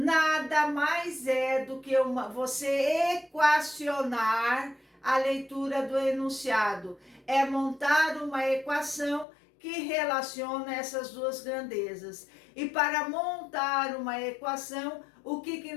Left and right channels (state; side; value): drops out; right; at 9.2 s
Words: mais é do que você equacionar a leitura do enunciado. É montar uma equação que relaciona essas duas grandezas. E para montar uma equação, o que